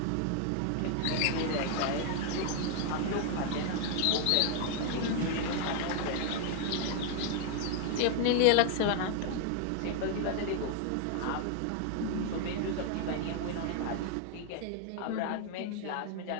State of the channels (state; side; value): different; both; correlation 0.00